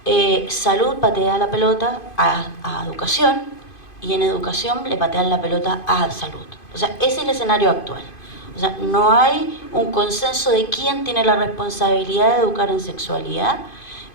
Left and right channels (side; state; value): right; late; 2.5 ms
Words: salud patea la pelota a educación, y en educación le patean la pelota a salud. O sea, ese es el escenario actual. O sea, no hay un consenso de quién tiene la responsabilidad de educar en sexualidad,